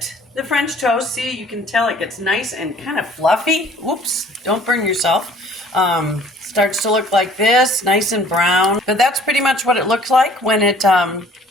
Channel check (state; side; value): normal; both; correlation 0.54